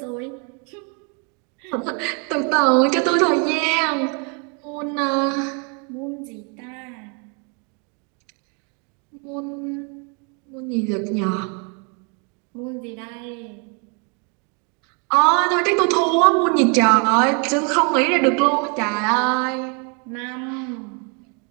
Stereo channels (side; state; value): left; quieter; 36.0 dB